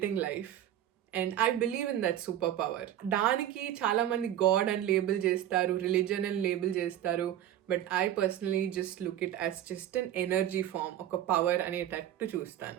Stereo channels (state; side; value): quieter; left; 11.6 dB